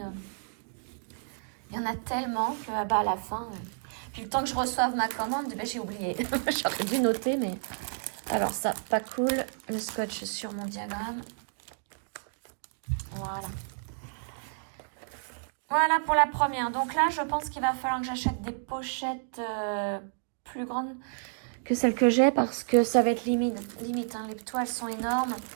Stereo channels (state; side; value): silent; left; digital silence